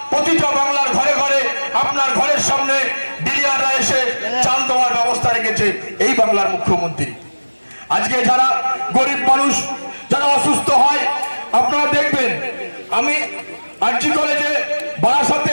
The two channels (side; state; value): both; inverted; correlation -1.00